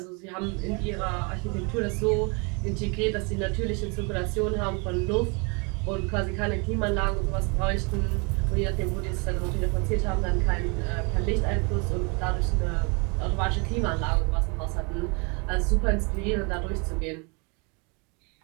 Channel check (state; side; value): quieter; left; 32.2 dB